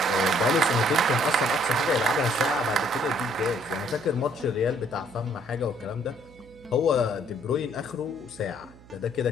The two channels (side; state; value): right; noise; hum, 23 dB below the sound